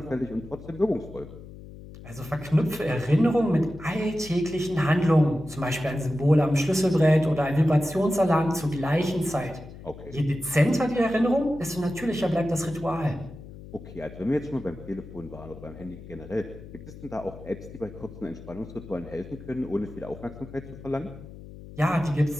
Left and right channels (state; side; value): noise; left; hum, 15 dB below the sound